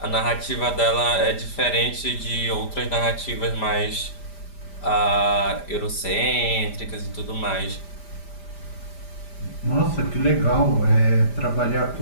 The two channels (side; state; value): right; late; 5.0 ms